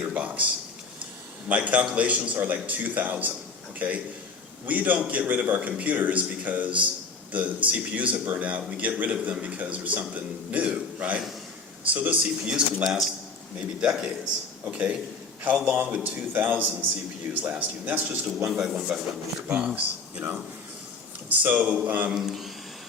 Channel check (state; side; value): quieter; right; 4.3 dB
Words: box? My calculations are like 2,000, okay? We don't get rid of our computers because the CPUs have burned out. We get rid of them because there's something new, right? So those CPUs can last maybe decades, okay? How long would 2,000 CPUs last you? And that's just a 1x1 meter box, you know? So